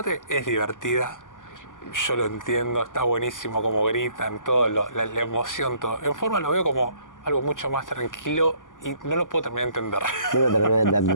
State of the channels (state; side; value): late; right; 0.88 ms